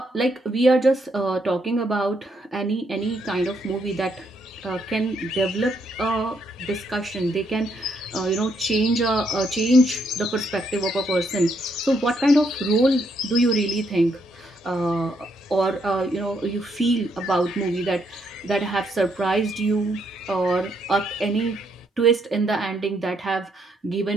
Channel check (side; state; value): both; normal; correlation 0.74